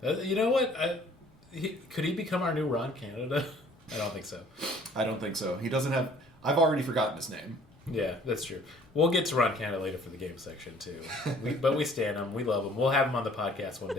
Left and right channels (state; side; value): normal; both; correlation 0.55